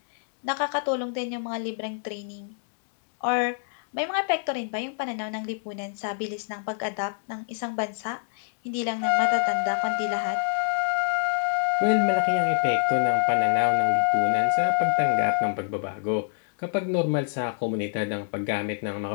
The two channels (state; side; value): silent; right; digital silence